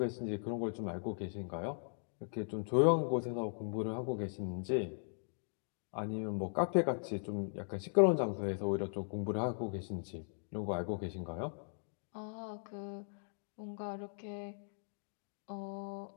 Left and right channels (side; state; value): right; silent; digital silence